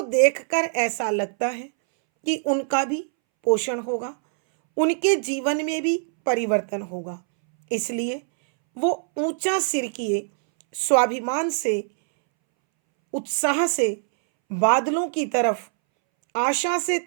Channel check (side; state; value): left; silent; 63 dB below the other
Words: देखकर ऐसा लगता है कि उनका भी पोषण होगा, उनके जीवन में भी परिवर्तन होगा। इसलिए वो ऊंचा सिर किए स्वाभिमान से, उत्साह से बादलों की तरफ आशा से